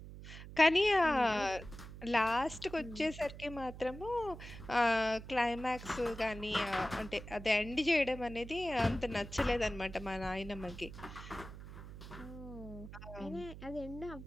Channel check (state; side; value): noise; right; hum, 13 dB below the sound